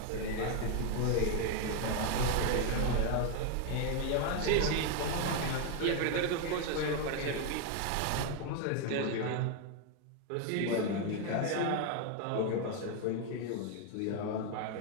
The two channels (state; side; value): different; both; correlation 0.01